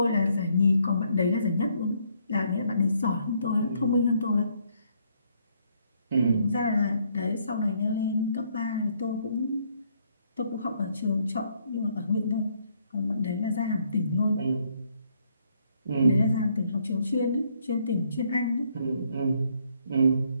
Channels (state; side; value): inverted; both; correlation -0.70